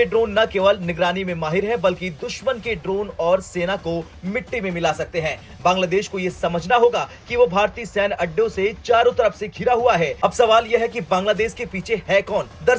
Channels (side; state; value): both; identical; correlation 1.00